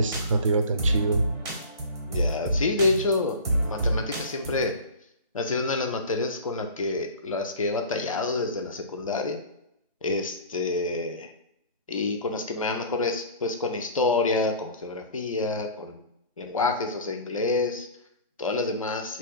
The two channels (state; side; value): inverted; both; correlation -0.39